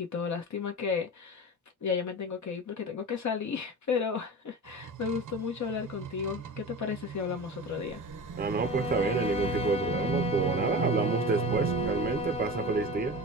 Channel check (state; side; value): normal; both; correlation 0.31